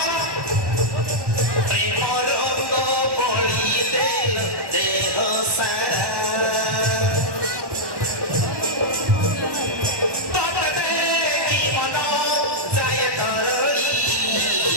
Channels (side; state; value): left; late; 1.1 ms